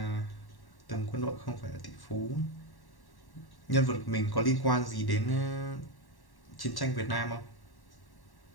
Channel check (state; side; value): late; right; 1.1 ms